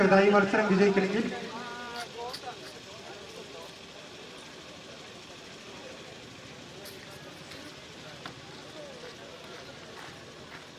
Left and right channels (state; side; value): identical; both; correlation 1.00